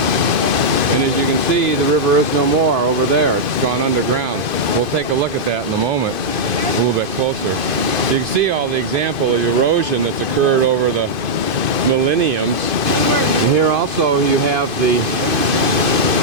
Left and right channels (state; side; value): late; left; 2.5 ms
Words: And as you can see, the river is no more over there. It's gone underground. We'll take a look at that in a moment, a little bit closer. You can see all the example of erosion that's occurred over the millenniums. And here also you have the,